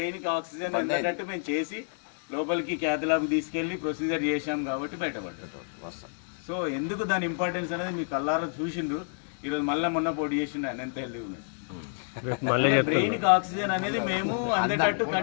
కి ఆక్సిజన్ అందటట్టు మేము చేసి లోపలికి క్యాథలాబ్ తీసుకెళ్లి ప్రొసీజర్ చేశాం కాబట్టి బయటపడ్డాడు. సో ఎందుకు దాని ఇంపార్టెన్స్ అనేది మీకు కల్లారా చూసిండ్రు. ఈరోజు మళ్ళీ మొన్న పోటీ చేసిండు ఆయన ఎంత హెల్దీ ఉన్నాడు. బ్రెయిన్ కి ఆక్సిజన్ అనేది మేము అందటట్టు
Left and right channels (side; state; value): right; silent; digital silence